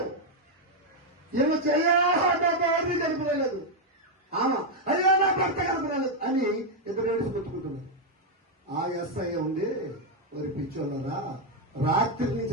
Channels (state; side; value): normal; both; correlation 0.01